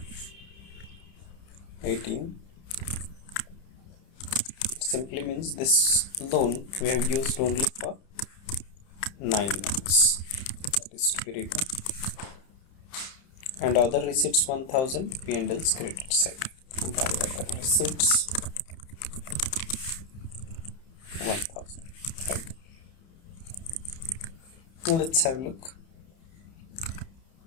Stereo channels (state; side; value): late; right; 30 ms